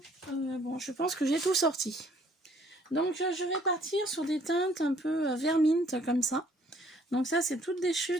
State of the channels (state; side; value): normal; both; correlation 0.61